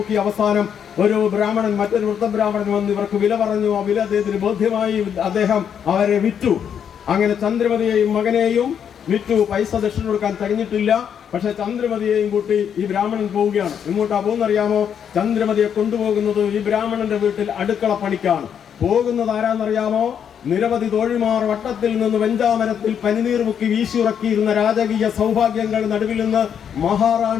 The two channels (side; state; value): right; quieter; 8.2 dB